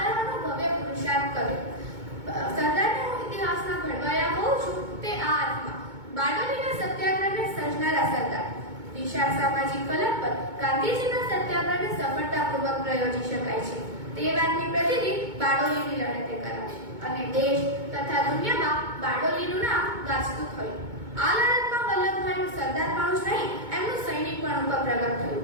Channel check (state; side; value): late; left; 2.2 ms